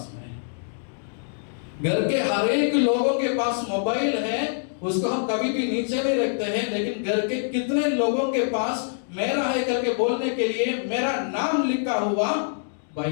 में है? घर के हर एक लोगों के पास मोबाइल है, उसको हम कभी भी नीचे नहीं रखते हैं, लेकिन घर के कितने लोगों के पास मेरा है करके बोलने के लिए मेरा नाम लिखा हुआ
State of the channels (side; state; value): right; silent; digital silence